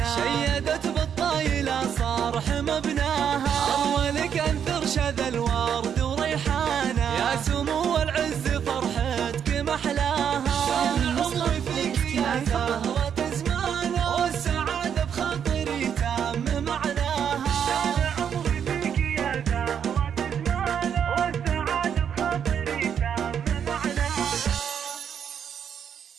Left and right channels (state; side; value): quieter; left; 8.2 dB